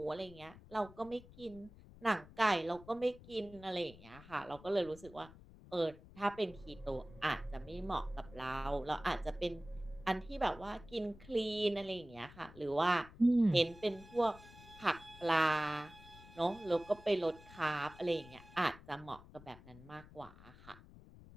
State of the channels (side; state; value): left; noise; rumble, 20 dB below the sound